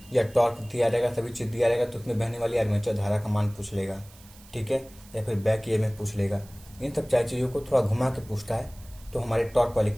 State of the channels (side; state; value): right; noise; hiss, 23 dB below the sound